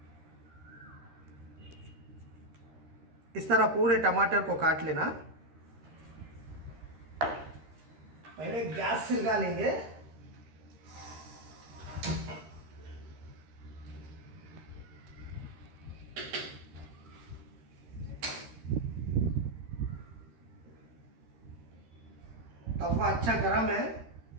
इस तरह पूरे टमाटर को काट लेना। पहले गैस सिलगा लेंगे। तवा अच्छा गरम है,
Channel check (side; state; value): left; late; 13 ms